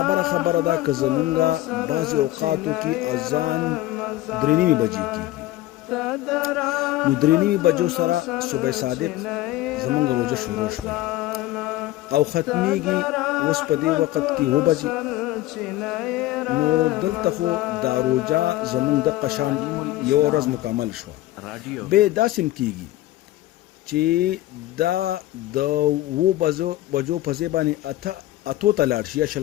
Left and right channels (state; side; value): quieter; right; 16.0 dB